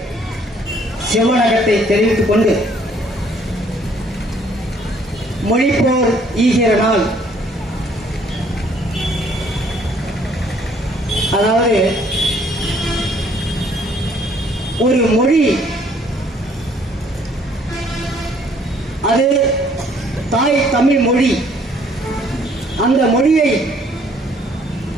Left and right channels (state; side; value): normal; both; correlation 0.62